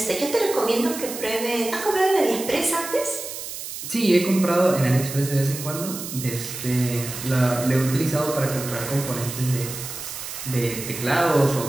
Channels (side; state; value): right; noise; hiss, 9 dB below the sound